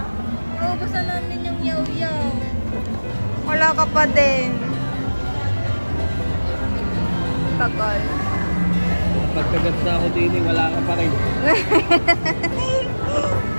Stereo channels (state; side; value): inverted; both; correlation -1.00